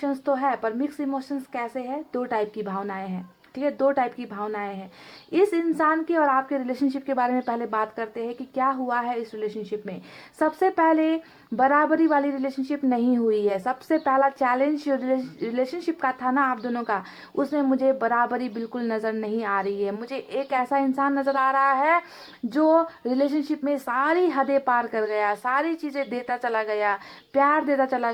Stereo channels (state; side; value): identical; both; correlation 1.00